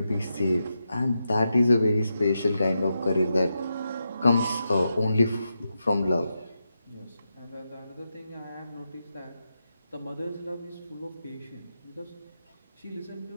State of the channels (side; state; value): both; inverted; correlation -0.87